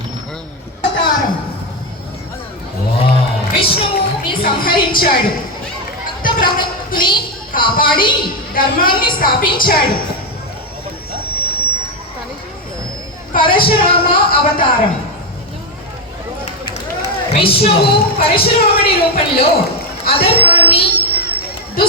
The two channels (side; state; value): both; normal; correlation 0.07